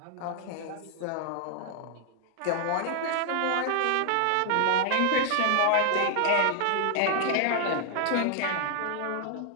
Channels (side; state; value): both; different; correlation 0.00